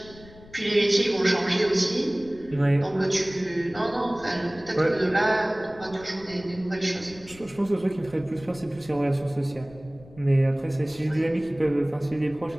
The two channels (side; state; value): left; noise; rumble, 21 dB below the sound